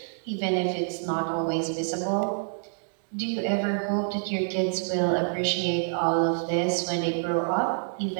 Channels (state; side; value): silent; left; digital silence